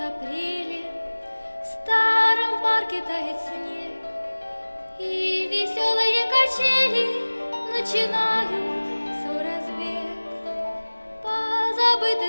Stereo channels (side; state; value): both; inverted; correlation -1.00